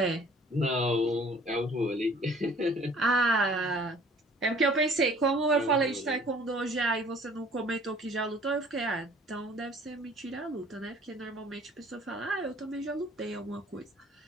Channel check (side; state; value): both; normal; correlation 0.53